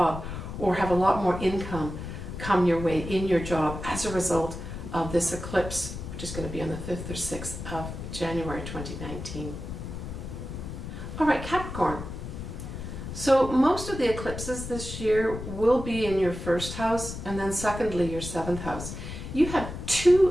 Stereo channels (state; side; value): noise; left; rumble, 8 dB below the sound